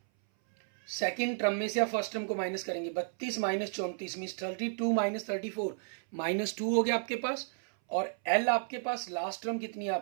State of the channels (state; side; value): silent; left; 56 dB below the other